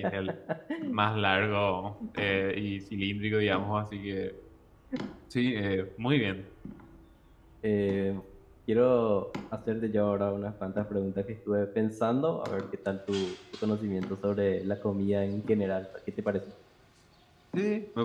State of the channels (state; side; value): identical; both; correlation 1.00